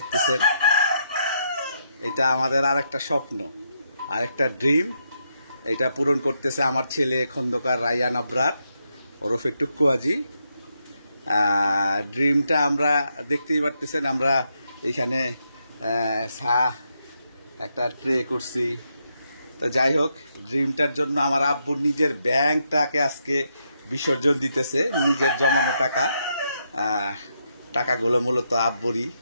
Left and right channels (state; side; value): inverted; both; correlation -0.80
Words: এটা আমাদের আরেকটা স্বপ্ন, আরেকটা ড্রিম। এটা পূরণ করতেছে আমার ছেলে খন্দকার রায়হান আবরার ওরফে টুক্কু হাজি। ড্রিমটা আমরা দেখতেই পারতেছেন, আমরা এখানে একটা ট্রে করছি। তো যাই হোক, ড্রিমটার জন্য আমার আব্বুর নিজের ব্যাংকটাকে আজকে বিসর্জন দিতেছে, নিজের জমানো টাকা। টাকাগুলো মূলত আব্বুরই,